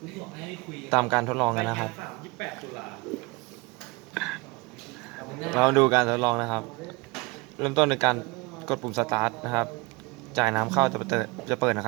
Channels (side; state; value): left; quieter; 26.1 dB